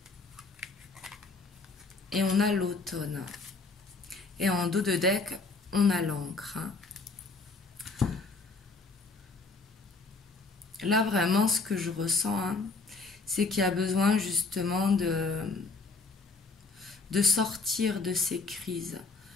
et on a l'automne. Et en dos de deck, on a l'encre. Là, vraiment, ce que je ressens, hein, c'est qu'il y a besoin justement de sortir de ces crises.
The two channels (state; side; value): quieter; right; 3.9 dB